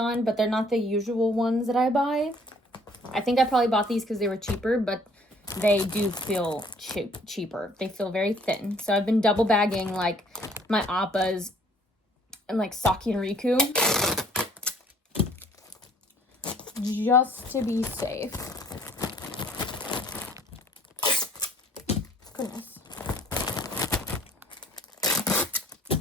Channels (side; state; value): both; normal; correlation 0.58